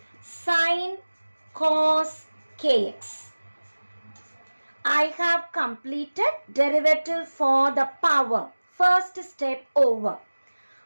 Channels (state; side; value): inverted; both; correlation -1.00